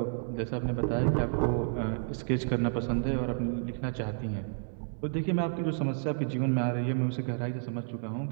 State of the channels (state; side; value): silent; left; 57 dB below the other